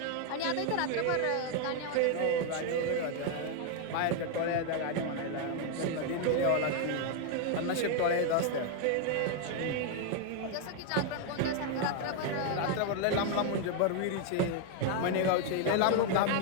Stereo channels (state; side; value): different; both; correlation 0.00